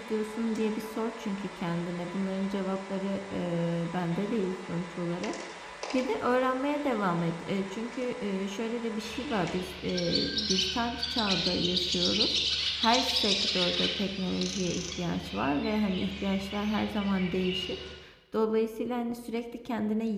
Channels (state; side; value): identical; both; correlation 1.00